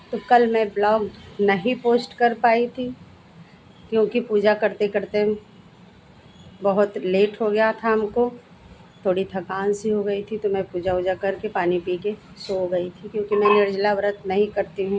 तो कल मैं ब्लॉग नहीं पोस्ट कर पाई थी क्योंकि पूजा करते करते बहुत लेट हो गया था हमको, थोड़ी थकान सी हो गई थी तो मैं पूजा वूजा करके पानी पी के सो गई थी क्योंकि मैं निर्जला व्रत नहीं करती हूँ।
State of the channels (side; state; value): both; identical; correlation 1.00